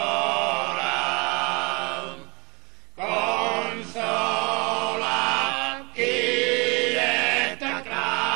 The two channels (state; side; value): quieter; left; 28.6 dB